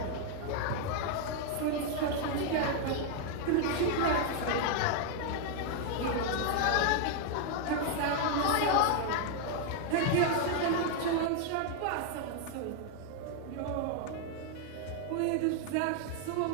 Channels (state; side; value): different; both; correlation 0.00